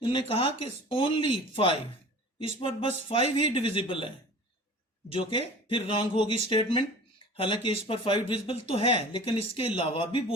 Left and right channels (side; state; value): both; normal; correlation 0.41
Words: इन्होंने कहा कि ओनली 5, इस पर बस 5 ही डिविजिबल है, जो कि फिर रॉन्ग होगी स्टेटमेंट। हालांकि इस पर 5 डिविजिबल तो है, लेकिन इसके अलावा भी